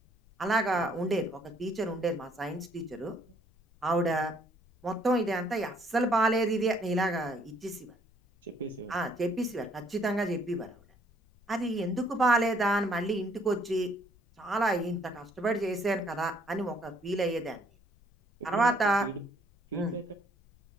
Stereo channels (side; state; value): left; noise; rumble, 29 dB below the sound